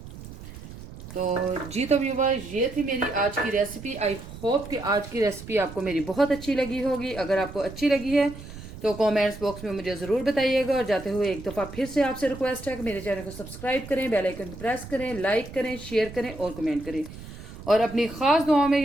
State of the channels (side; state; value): right; noise; rumble, 14 dB below the sound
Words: तो जी तो व्यूअर्स, ये थी मेरी आज की रेसिपी। आई होप कि आज की रेसिपी आपको मेरी बहुत अच्छी लगी होगी। अगर आपको अच्छी लगी है तो कमेंट्स बॉक्स में मुझे ज़रूर बताइएगा। और जाते हुए एक दफ़ा फिर से आपसे रिक्वेस्ट है कि मेरे चैनल को सब्सक्राइब करें, बेल आइकन को प्रेस करें, लाइक करें, शेयर करें और कमेंट करें। और अपनी ख़ास दुआओं में